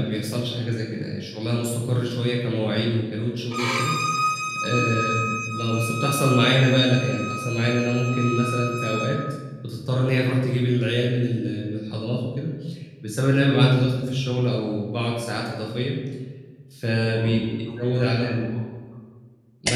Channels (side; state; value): both; identical; correlation 1.00